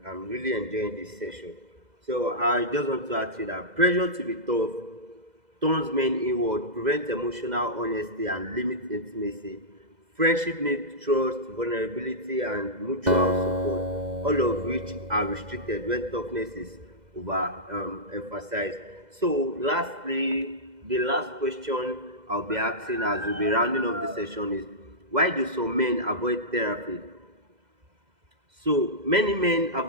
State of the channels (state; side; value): late; left; 2.0 ms